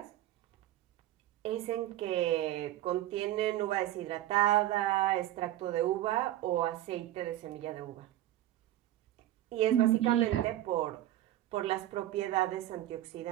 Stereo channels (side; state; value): left; quieter; 13.8 dB